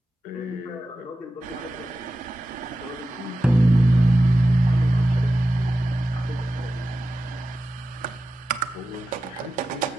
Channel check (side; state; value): both; normal; correlation 0.93